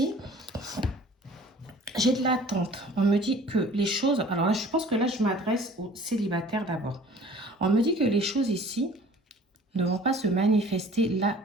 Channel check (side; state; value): both; normal; correlation 0.49